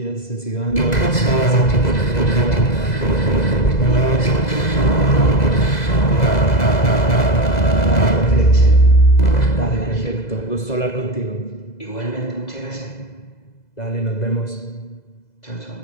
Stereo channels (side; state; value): right; late; 2.0 ms